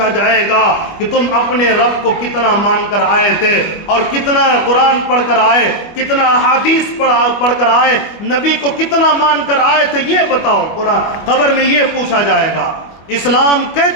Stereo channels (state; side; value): late; right; 25 ms